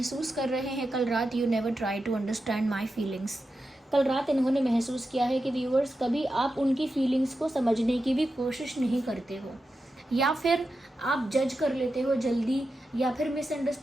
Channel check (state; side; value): normal; both; correlation 0.90